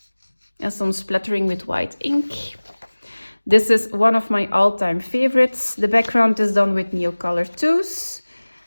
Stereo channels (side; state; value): both; inverted; correlation -1.00